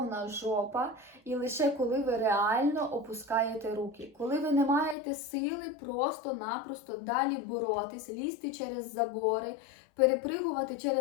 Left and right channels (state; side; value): drops out; right; at 5.0 s